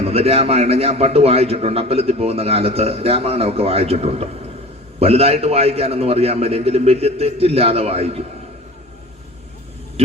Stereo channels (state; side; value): normal; both; correlation 0.39